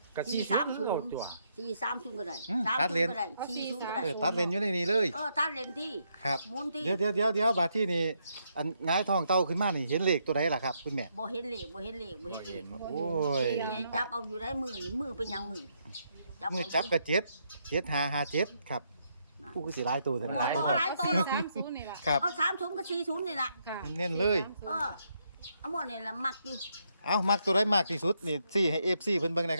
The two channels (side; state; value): both; inverted; correlation -0.76